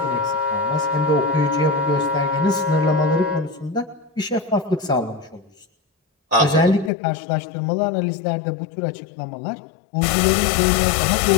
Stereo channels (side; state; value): right; drops out; at 6.9 s